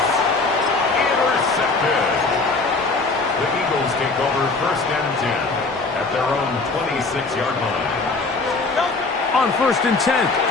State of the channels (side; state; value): right; quieter; 3.7 dB